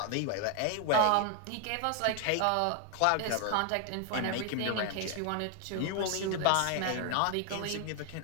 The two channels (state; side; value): different; both; correlation 0.00